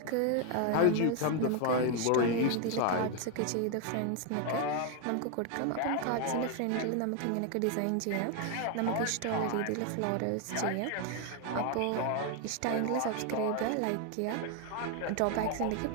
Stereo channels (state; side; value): different; both; correlation 0.01